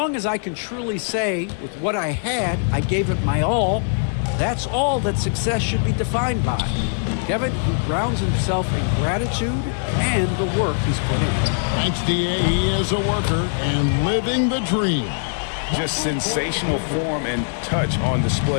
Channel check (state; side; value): silent; right; digital silence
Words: as I can truly say, with what I had, I gave it my all, that's all that success should be defined by. Kevin, he grounds himself in gratitude and the work he's put in. Thanks, D.A. He is a worker and living the dream. Just sensational form and touch on